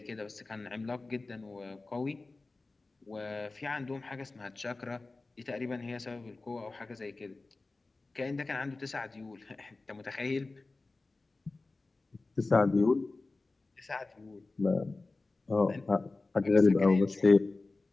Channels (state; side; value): quieter; right; 3.4 dB